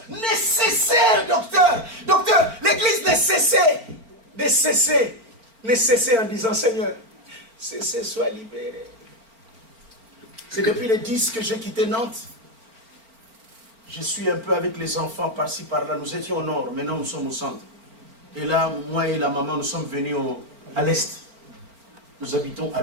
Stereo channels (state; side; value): late; left; 4.4 ms